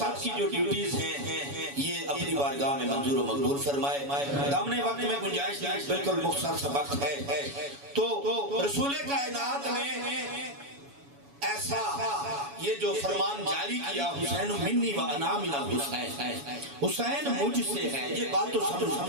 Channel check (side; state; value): left; late; 7.1 ms